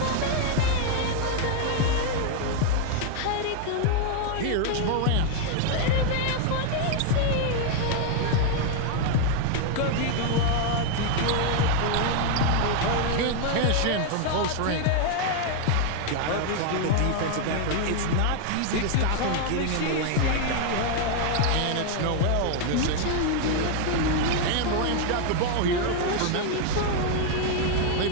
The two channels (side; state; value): both; different; correlation 0.00